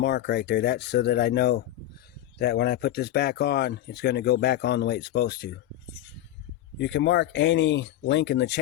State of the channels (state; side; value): quieter; right; 13.1 dB